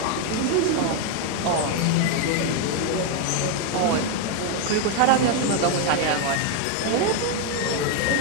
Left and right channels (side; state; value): both; different; correlation 0.01